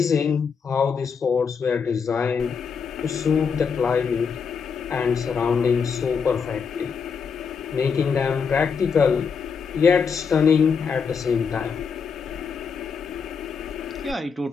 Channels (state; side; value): quieter; right; 6.1 dB